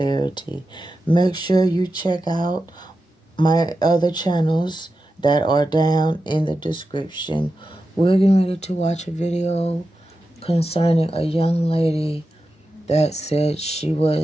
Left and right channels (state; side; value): normal; both; correlation 0.91